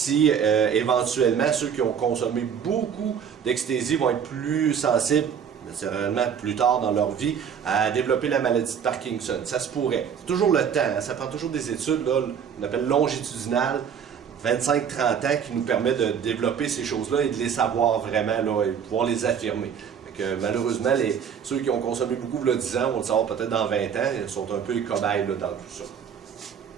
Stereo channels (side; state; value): left; quieter; 7.7 dB